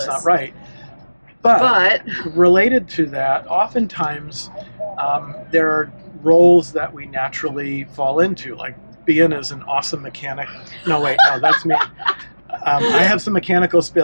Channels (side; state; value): both; inverted; correlation -1.00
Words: It's not right. But related to that, oftentimes there are roles that we naturally fall into, like Behan is an awesome mechanic. No, that's me. I have some mechanical